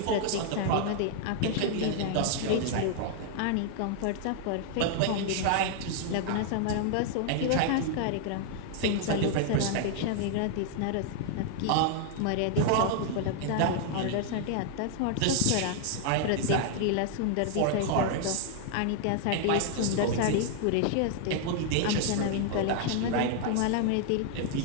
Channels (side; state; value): both; different; correlation 0.00